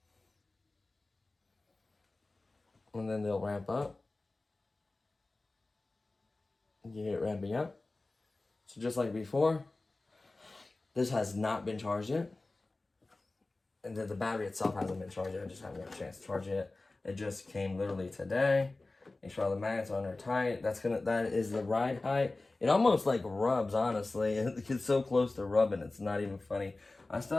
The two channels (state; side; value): quieter; right; 3.2 dB